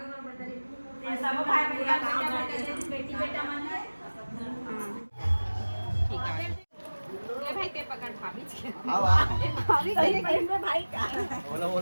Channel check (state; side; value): inverted; both; correlation -1.00